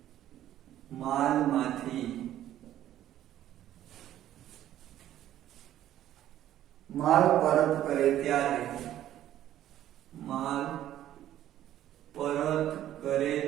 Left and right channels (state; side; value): quieter; left; 12.3 dB